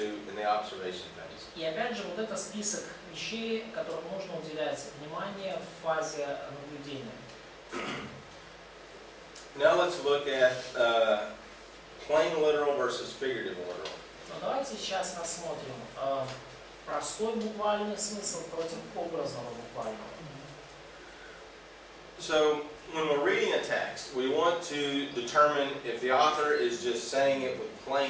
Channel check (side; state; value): both; identical; correlation 1.00